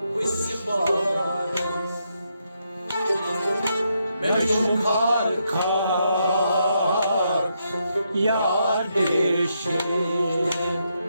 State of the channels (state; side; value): inverted; both; correlation -0.80